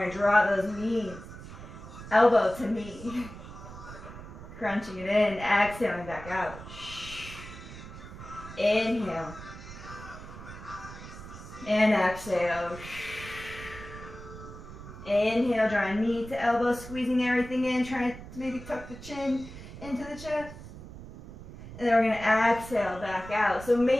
to draw those knees, elbow to knee. Crunching it in, exhaling back out. Inhale. And exhale. Inhale, drawing knee to elbow, squeezing everything in, trying to maybe tuck the chin into the chest. And then we're going to exhale back out. So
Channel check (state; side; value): noise; right; rumble, 14 dB below the sound